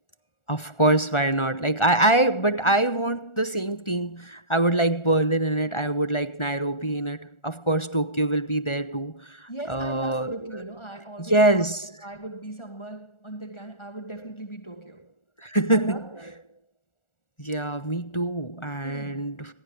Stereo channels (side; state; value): right; late; 1.4 ms